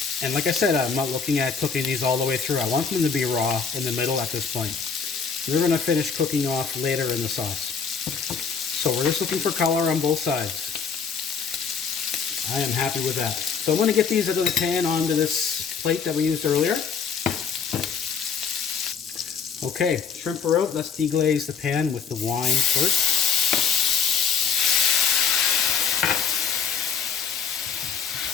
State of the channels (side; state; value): right; quieter; 6.2 dB